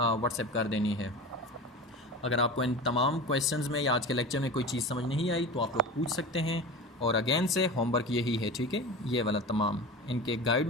कर देनी है। अगर आपको इन तमाम क्वेश्चंस में या आज के लेक्चर में कोई चीज़ समझ नहीं आई तो आप लोग पूछ सकते हैं। और अगेन से होमवर्क यही है, ठीक है, ये वाला तमाम, इनके guide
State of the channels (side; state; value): both; normal; correlation 0.31